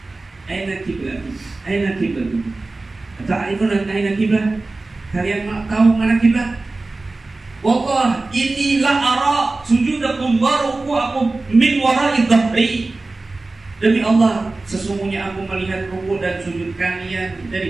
Aina kiblat? Aina kiblat? Ta'rifuna aina kiblat? Kalian tahu mana kiblat? Wallah, inni la ara sujudakum wa ruku'akum min wara'i dhahri. Demi Allah, sesungguhnya aku melihat ruku dan sujud kalian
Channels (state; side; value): quieter; left; 3.3 dB